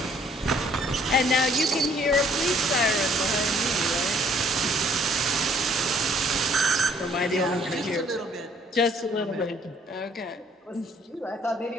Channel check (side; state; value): both; normal; correlation 0.62